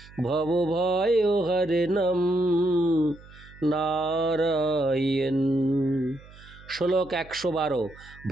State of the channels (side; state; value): right; noise; hum, 21 dB below the sound